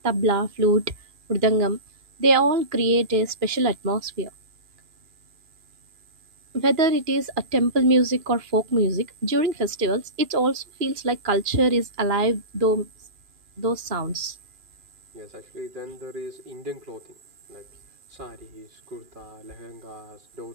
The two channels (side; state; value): left; late; 2.4 ms